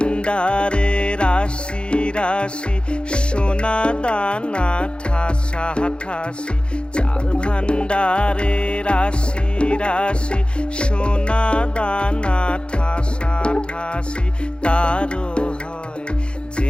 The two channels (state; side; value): late; right; 0.055 ms